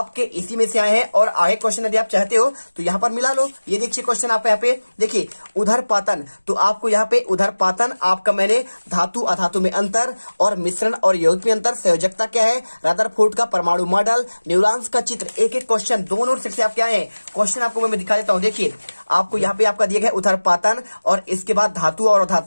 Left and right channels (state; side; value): inverted; both; correlation -1.00